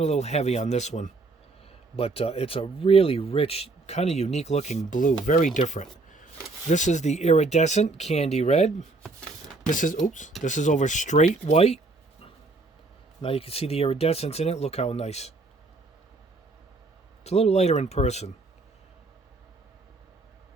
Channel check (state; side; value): quieter; left; 3.4 dB